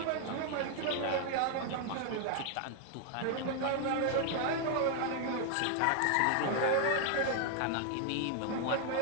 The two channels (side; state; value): both; different; correlation 0.00